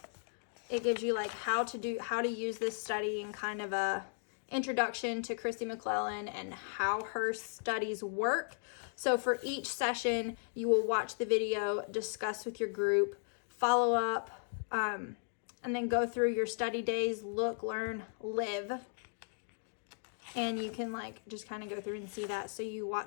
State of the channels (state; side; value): silent; right; digital silence